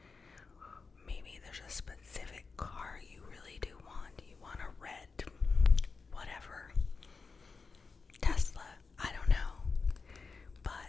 Maybe there's a specific car you really do want. You want a red, whatever, Tesla, I don't know.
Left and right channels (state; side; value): quieter; right; 4.6 dB